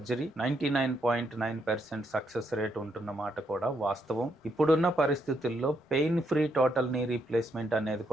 99.9% సక్సెస్ రేట్ ఉంటున్న మాట కూడా వాస్తవం. ఇప్పుడున్న పరిస్థితుల్లో pain free total knee replacement అనేది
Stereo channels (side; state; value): both; normal; correlation 0.76